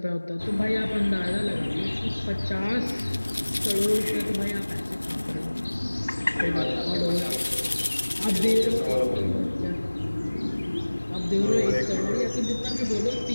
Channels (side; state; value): both; inverted; correlation -1.00